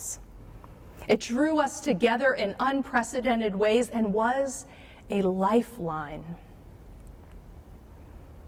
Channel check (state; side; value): identical; both; correlation 1.00